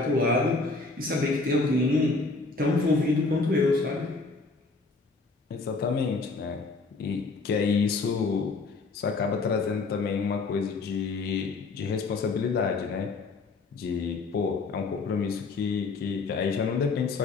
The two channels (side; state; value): right; quieter; 3.8 dB